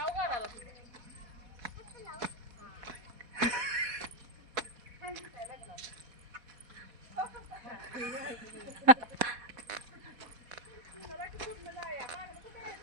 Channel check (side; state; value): left; late; 4.1 ms